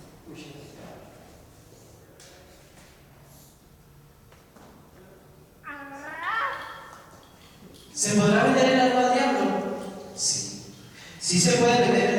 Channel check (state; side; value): identical; both; correlation 1.00